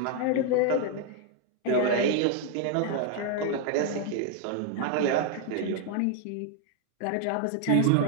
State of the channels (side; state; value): both; different; correlation 0.00